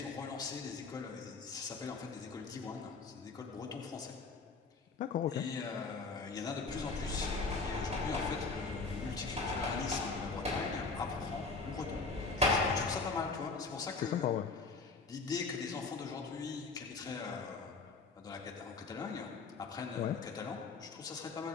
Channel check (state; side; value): quieter; right; 4.2 dB